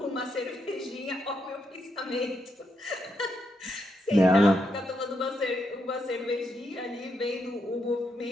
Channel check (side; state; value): both; normal; correlation 0.81